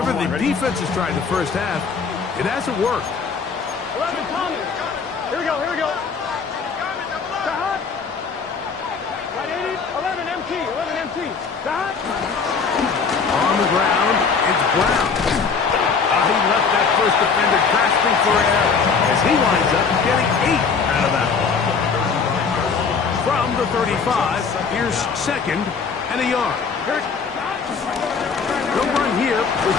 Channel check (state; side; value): quieter; right; 5.4 dB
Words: the defense has tried in the first half, it hasn't worked. 11, Tommy. Here we go, here we go. Stop. Right, 80, 11, MT, 11, MT. Stop. On the ground, it's Brown. He left that first defender grasping for air as he winds up getting 8 out of that one. From the 35, here's second and a yard. No run here with